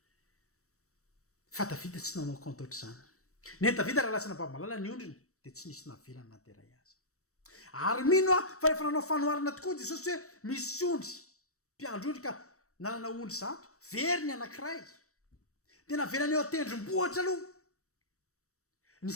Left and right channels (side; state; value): right; late; 0.65 ms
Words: fa Davida tsy nanao compte ohatr'izany ny Davida raha lasana baby malala ny ondriny dia tsy nisy navelany nateray azy ary mino fa rehefa nanao fanoharana tokoa Jesosy hoe misy ondry mpiandry ondry ka nanana ondry zato very ny anankiray dia navelany eo atendrombohatra aloha ny